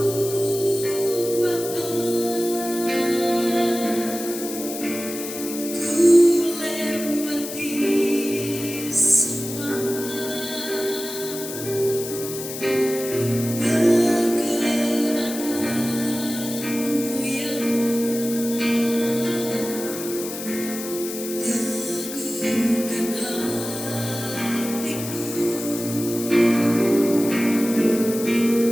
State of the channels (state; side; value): noise; left; hiss, 9 dB below the sound